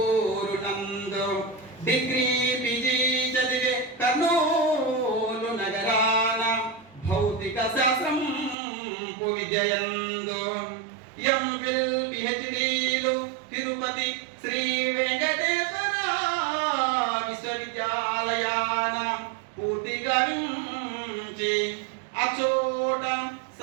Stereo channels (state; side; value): drops out; left; at 8.6 s